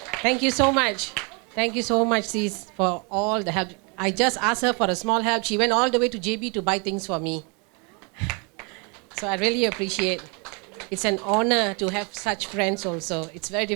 Thank you so much. Thank you so much, sis, for all the help. I just asked her for a small help. She went all the way to JB to buy things for me. So I really appreciate. It's an honor to have such friends also. It's very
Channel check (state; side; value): quieter; left; 32.8 dB